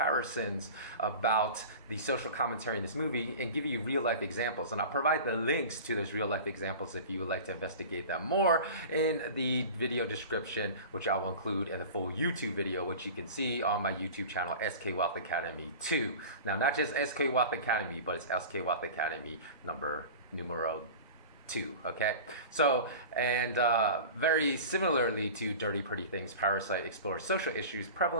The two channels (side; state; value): both; inverted; correlation -0.36